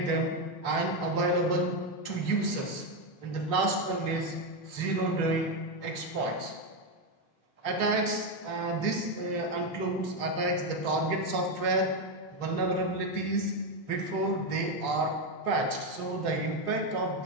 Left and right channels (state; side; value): late; right; 3.5 ms